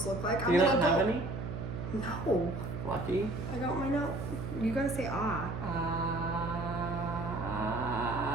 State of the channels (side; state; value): right; noise; hum, 6 dB below the sound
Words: look like. Do you not have any? No. Lucky. I got my note. You gotta say ah.